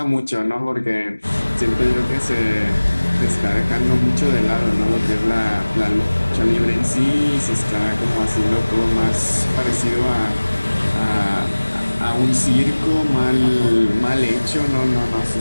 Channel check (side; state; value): both; inverted; correlation -1.00